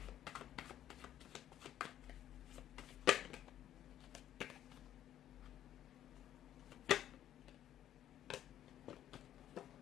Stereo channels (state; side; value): quieter; right; 11.5 dB